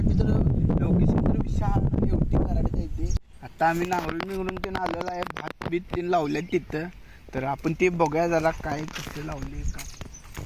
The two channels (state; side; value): identical; both; correlation 1.00